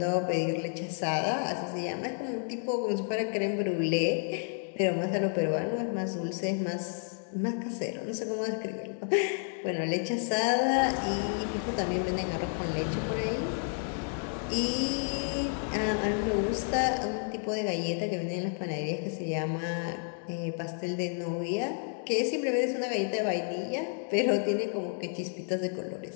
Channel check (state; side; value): silent; right; 57 dB below the other